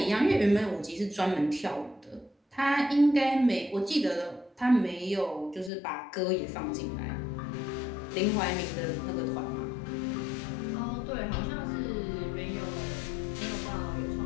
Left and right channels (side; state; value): right; drops out; at 5.7 s